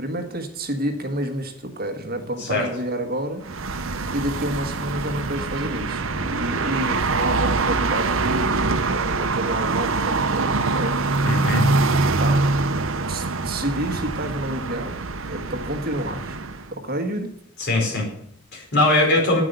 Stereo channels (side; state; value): both; normal; correlation 0.29